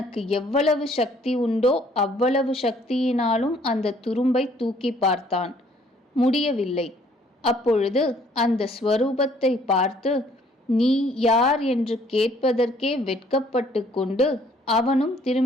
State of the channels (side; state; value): both; normal; correlation 0.61